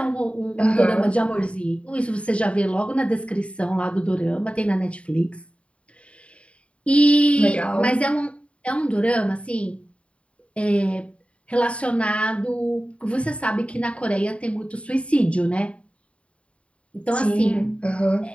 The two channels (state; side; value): late; right; 0.061 ms